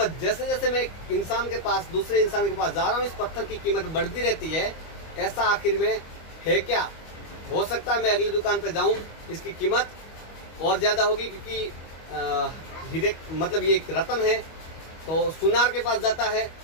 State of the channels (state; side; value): late; right; 25 ms